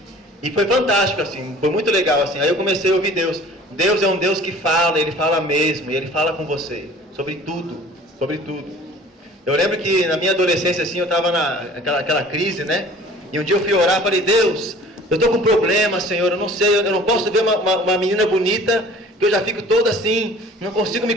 E foi fantástico, assim, foi muito legal, assim. Aí eu comecei a ouvir Deus. Deus é um Deus que fala, Ele fala mesmo, e Ele fala com você, sobre tudo, sobre tudo. Eu lembro que na minha adolescência, assim, eu estava naquela crise, né? E um dia eu fui orar, falei, Deus, eu estou com um problema, Senhor, eu não sei, eu não posso ver uma menina bonita, que eu já fico toda assim, não consigo me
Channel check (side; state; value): both; normal; correlation 0.48